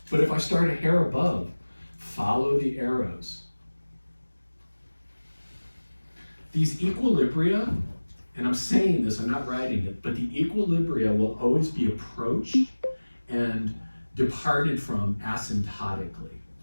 But if I start a hair above, follow the arrows. These equilibria, and I'm saying this, I'm not writing it, but the equilibria will always be approached and departed from asymptotically.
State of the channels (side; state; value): both; inverted; correlation -1.00